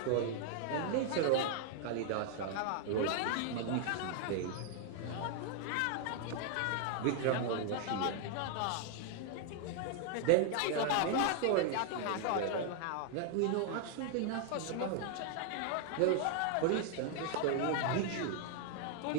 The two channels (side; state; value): both; different; correlation 0.00